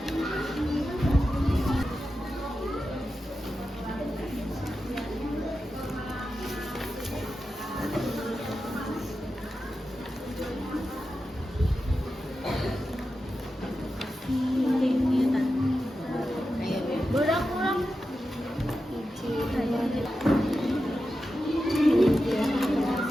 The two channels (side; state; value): both; normal; correlation 0.91